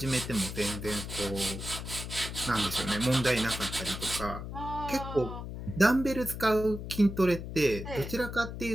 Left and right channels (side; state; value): left; noise; hum, 8 dB below the sound